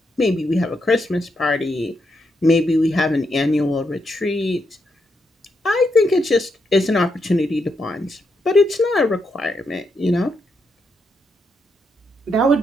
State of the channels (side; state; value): both; normal; correlation 0.81